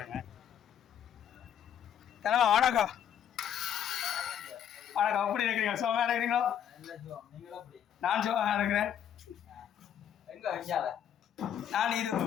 தனவா வணக்கம். வணக்கம், எப்படி இருக்கிறீங்க? சுகமாக இருக்கிறீங்களோ? நான் சுகமாக இருக்கிறேன். நான் இது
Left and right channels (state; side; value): quieter; right; 9.3 dB